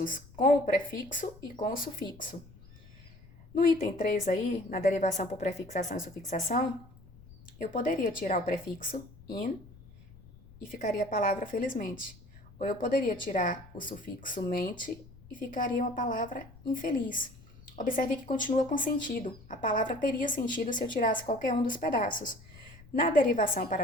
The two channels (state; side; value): noise; left; rumble, 22 dB below the sound